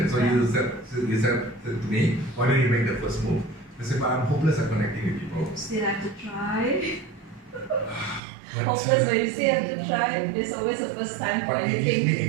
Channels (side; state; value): left; drops out; at 8.2 s